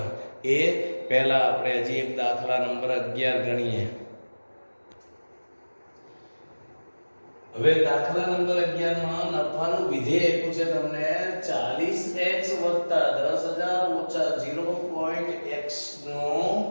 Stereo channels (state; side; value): inverted; both; correlation -1.00